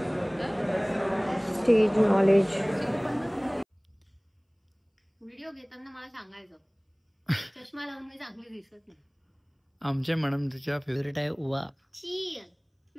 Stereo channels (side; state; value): both; identical; correlation 1.00